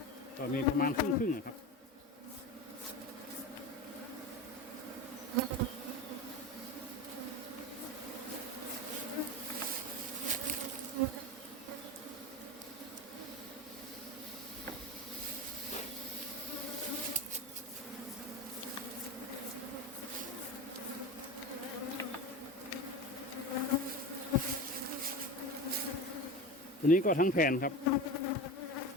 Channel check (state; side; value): normal; both; correlation 0.27